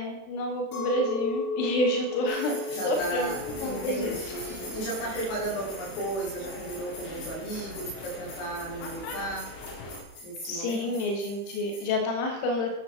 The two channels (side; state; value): right; late; 31 ms